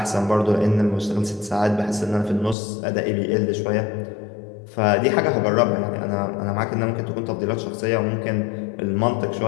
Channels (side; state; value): right; drops out; at 2.6 s